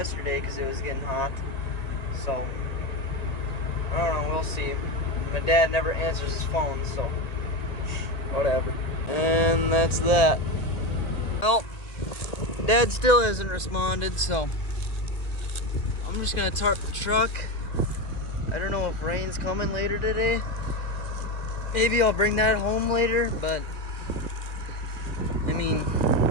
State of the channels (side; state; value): right; late; 1.9 ms